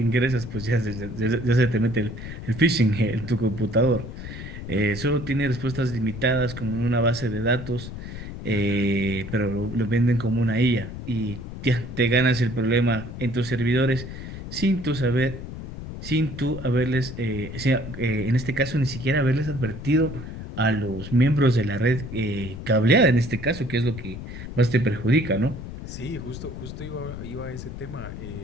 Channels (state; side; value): noise; left; rumble, 10 dB below the sound